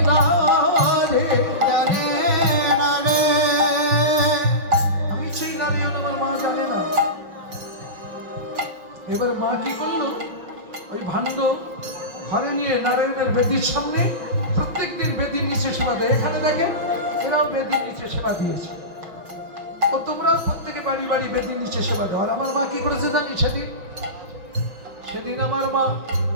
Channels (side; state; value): left; late; 6.3 ms